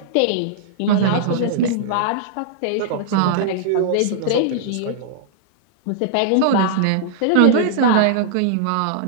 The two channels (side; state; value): both; different; correlation -0.01